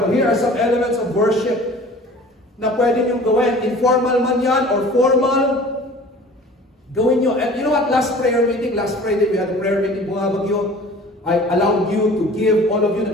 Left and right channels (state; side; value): normal; both; correlation 0.45